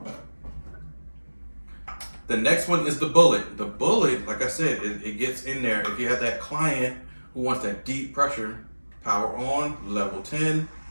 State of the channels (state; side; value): inverted; both; correlation -1.00